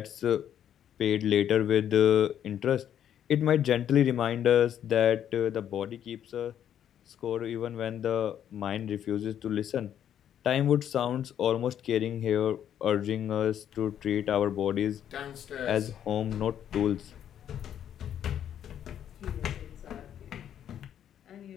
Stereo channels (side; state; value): right; quieter; 9.9 dB